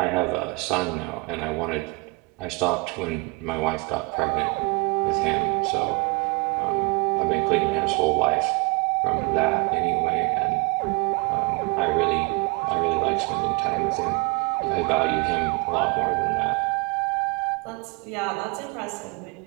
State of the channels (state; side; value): quieter; left; 25.7 dB